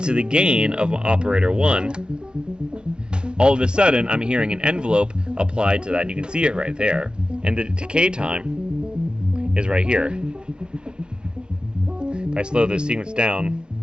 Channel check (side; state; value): left; late; 0.048 ms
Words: the gain of operator 1, all of a sudden I'm hearing an envelope applied to that, and you can see it right there. And the decay time is right here. If I slow this sequence down,